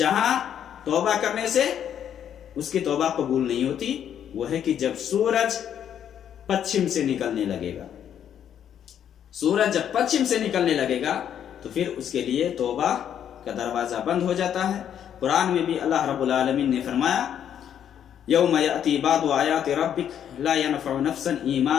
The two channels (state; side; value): quieter; right; 9.4 dB